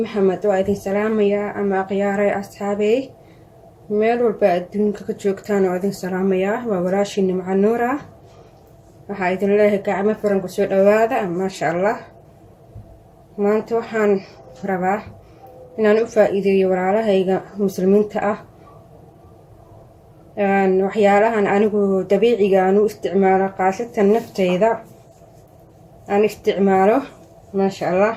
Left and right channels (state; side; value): identical; both; correlation 1.00